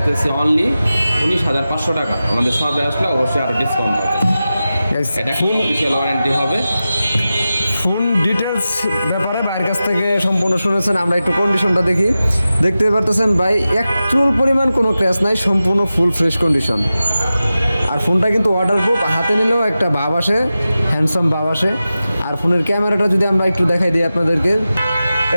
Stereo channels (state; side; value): inverted; both; correlation -0.94